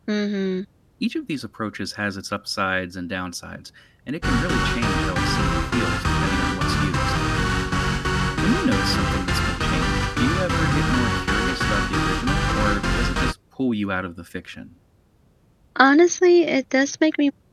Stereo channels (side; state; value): both; identical; correlation 1.00